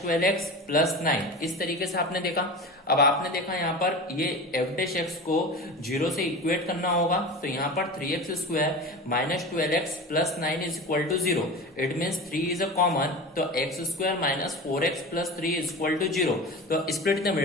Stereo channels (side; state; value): both; normal; correlation 0.31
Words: 12x plus 9, इस तरीके से आपने देखा। अब आपने देखा यहाँ पर ये एफ डैश एक्स को 0 से इक्वेट करना होगा, तो यहाँ पर 3x square minus 12x plus 9 is equal to 0, it means 3 is a common, तो x square minus 4x plus 3 is equal to 0। तो स्प्लिट द